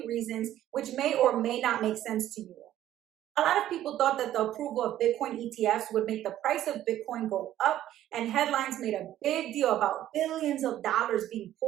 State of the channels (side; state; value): left; quieter; 12.7 dB